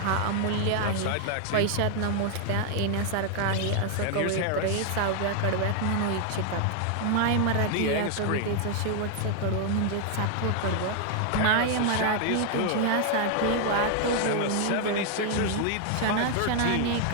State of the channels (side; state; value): both; different; correlation 0.00